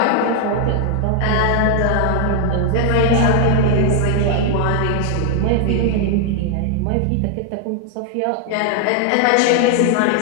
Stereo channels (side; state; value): both; different; correlation 0.00